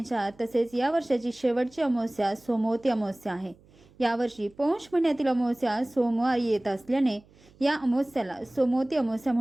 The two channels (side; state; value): right; noise; hum, 28 dB below the sound